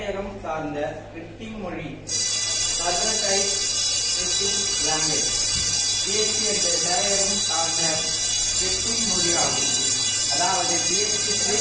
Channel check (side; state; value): both; identical; correlation 1.00